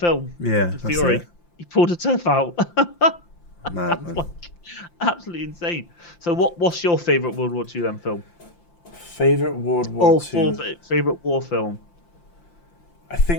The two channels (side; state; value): right; late; 5.8 ms